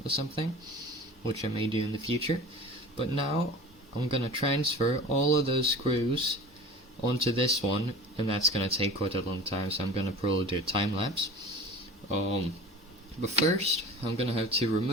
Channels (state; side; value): normal; both; correlation 0.38